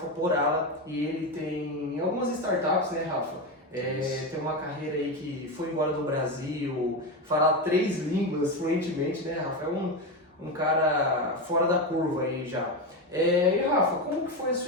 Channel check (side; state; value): both; normal; correlation 0.15